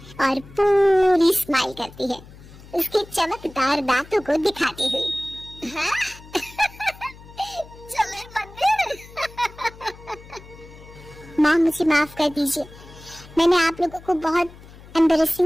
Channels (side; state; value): left; noise; hum, 20 dB below the sound